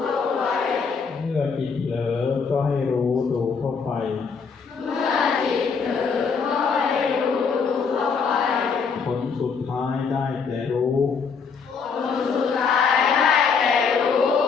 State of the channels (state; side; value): quieter; right; 5.6 dB